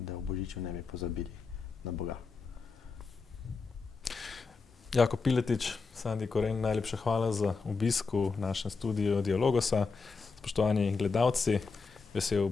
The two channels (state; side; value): quieter; right; 4.6 dB